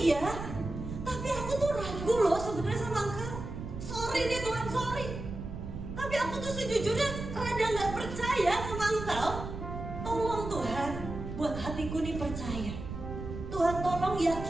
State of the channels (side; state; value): right; noise; rumble, 8 dB below the sound